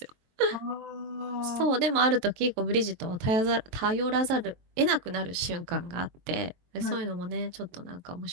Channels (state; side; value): late; left; 22 ms